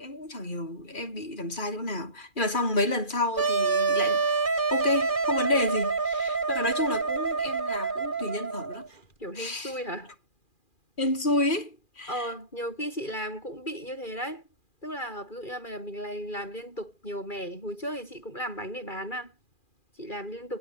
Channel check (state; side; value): late; right; 2.4 ms